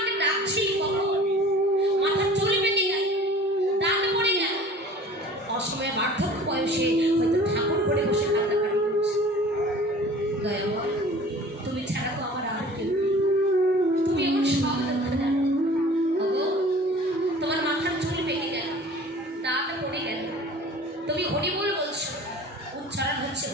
ডাকছি কখন মাথার চুল বেঁধে যায়, দাঁত পড়ে যায়, অসময়ে বার্ধক্য বয়সে হয়তো ঠাকুর করে বসে কান্নাকাটি করছে। দয়াময় তুমি ছাড়া তো আমার আর কেউ, তুমি এমন সব দুঃখ জানো। তোমার মাথার চুল বেঁধে গেল, দাঁত পড়ে গেল, তুমি হরিবোল বলছো, উচ্চারণ হচ্ছে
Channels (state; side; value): normal; both; correlation 0.45